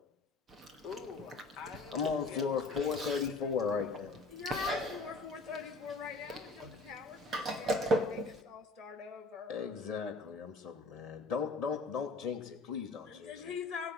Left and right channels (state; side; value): quieter; right; 3.2 dB